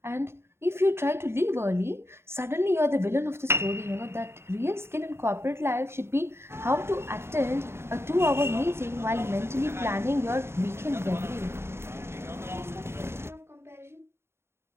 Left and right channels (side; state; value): left; late; 0.12 ms